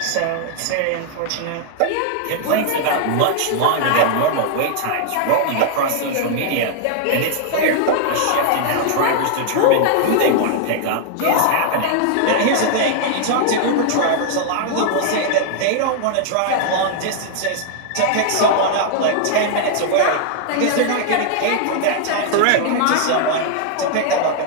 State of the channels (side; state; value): both; different; correlation 0.00